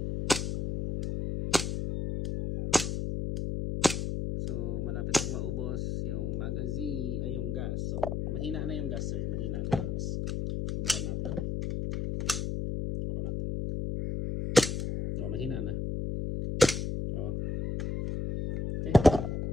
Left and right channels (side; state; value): left; noise; hum, 1 dB below the sound